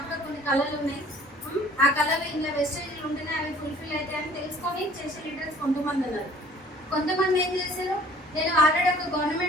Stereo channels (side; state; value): both; normal; correlation 0.52